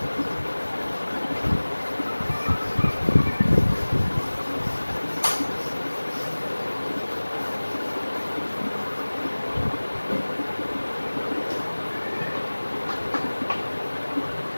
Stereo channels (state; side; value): inverted; both; correlation -1.00